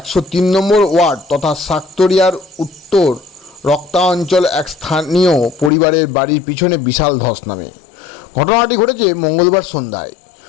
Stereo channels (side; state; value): right; drops out; at 5.7 s